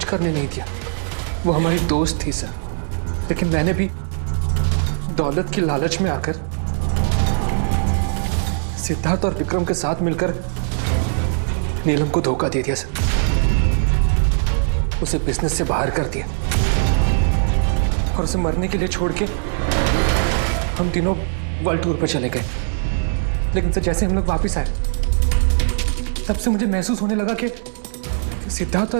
करने नहीं दिया। वो हमारी दोस्त थी सर, लेकिन मैंने भी दौलत की लालच में आकर सिद्धार्थ और विक्रम के साथ मिलकर नीलम को धोखा दे दिया सर। उसे बिजनेस से बाहर कर दिया और उसे मरने के लिए छोड़ के हम तीनों वर्ल्ड टूर पर चले गए। लेकिन सर जैसे हम लोग वापस आए, तब से मुझे महसूस होने लगा कि सिद्धार्थ और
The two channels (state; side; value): silent; left; digital silence